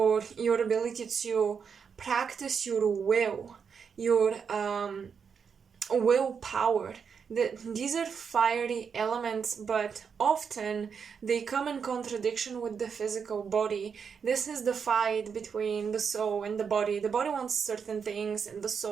your ability to practice your will, your willpower. These are fiery elements, but often they come in contradiction with the physical body. This is the fight between the soul and the body. The body wants certain things and the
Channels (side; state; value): left; quieter; 6.4 dB